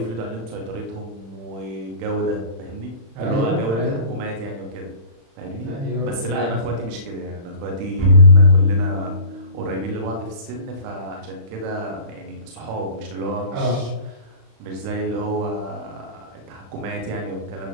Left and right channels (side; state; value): left; late; 35 ms